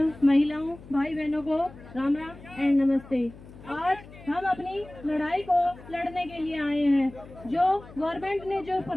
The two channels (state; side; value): noise; left; hum, 19 dB below the sound